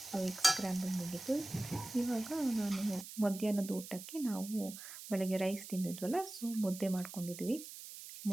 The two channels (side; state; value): right; noise; hiss, 12 dB below the sound